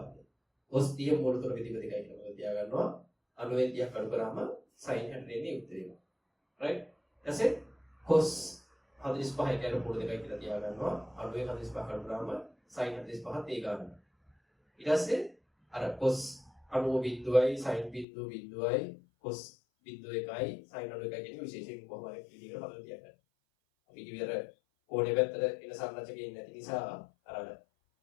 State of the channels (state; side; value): drops out; right; at 18.1 s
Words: cos 30 මූල තුන බෙදීම දෙකයි කියලා තියා ගන්නවා. අඩුවෙන් 30 කඩු කරාම sin 60 එන්නේ උත්තරේ. right? ඊටසේ cos 45 කියන මූල දෙකයි කියලා තියා ගන්නවා. අඩුවෙන් 45 කඩු කරාම sin 45ත් ඒ ගන්නවා. ඊට පස්සේ අර cos 90 බිඳුවයි sin බිඳුවයි cos බිඳුව එකයි sin 90 එකයි කියන විශේෂයෙන් කොහොම හරි විදිහකට හදලා තියාගන්න. අපි කිව්වර කෝණේ පැත්තට එන සංරචකයෙන් නැති නිසා අර